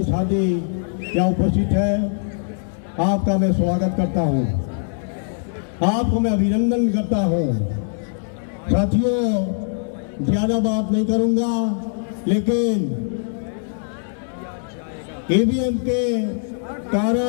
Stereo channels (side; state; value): right; silent; digital silence